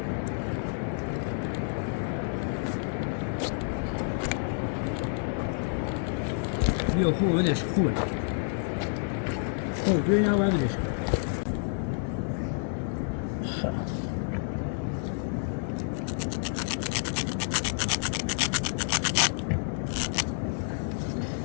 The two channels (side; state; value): right; silent; digital silence